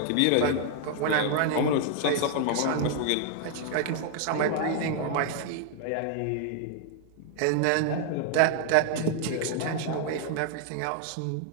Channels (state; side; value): different; both; correlation 0.00